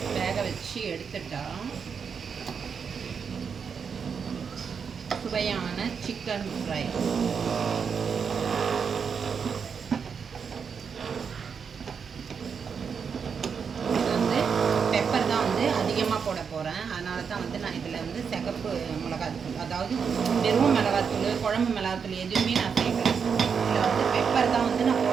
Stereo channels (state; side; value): quieter; left; 6.4 dB